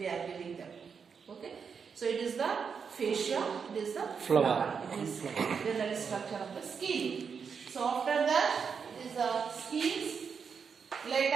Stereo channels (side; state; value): left; quieter; 6.2 dB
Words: are giving them. Okay. So it is the fascia. It is the flower. It is the general structure of the skein. So after that it is the skeins.